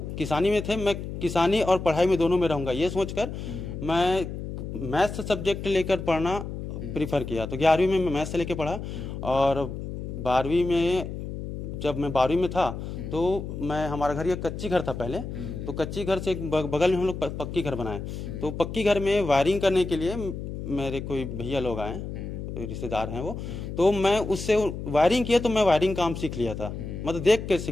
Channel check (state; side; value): noise; left; hum, 7 dB below the sound